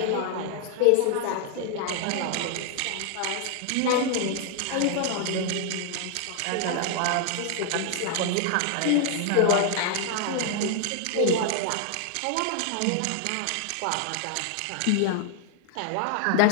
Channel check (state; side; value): different; both; correlation 0.00